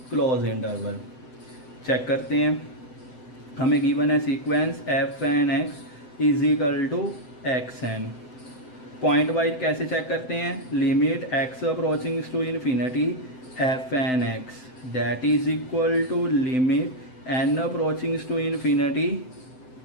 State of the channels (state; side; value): late; right; 7.8 ms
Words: close interval. Check करते हैं, हमें given है sequence f n x is equal to x n. Pointwise कैसे check करते हैं, limit x approaching to infinity f n x that is equal to limit n approaching to infinity